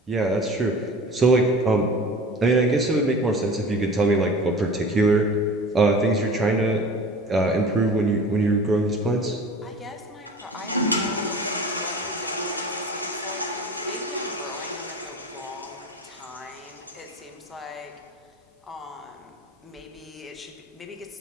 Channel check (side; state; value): both; normal; correlation 0.39